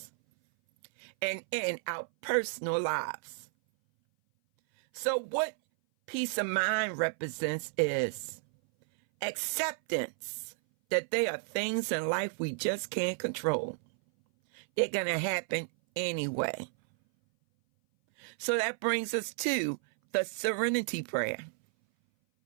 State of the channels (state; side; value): silent; left; 56 dB below the other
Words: and in our personal lives. So what peace of mind represents is acceptance that there are things in life we just can't control. They're going to happen anyway. So that brings us to the serenity prayer.